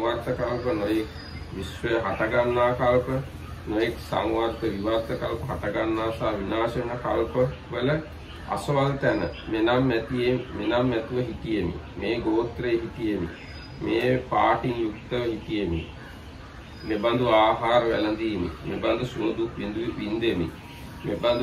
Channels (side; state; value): both; identical; correlation 1.00